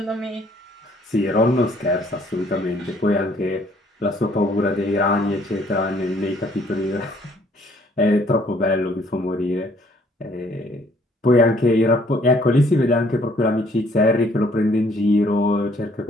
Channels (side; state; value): both; normal; correlation 0.62